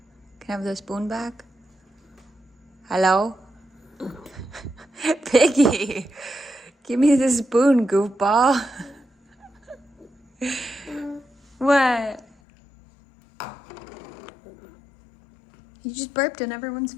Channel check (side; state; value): right; drops out; at 12.2 s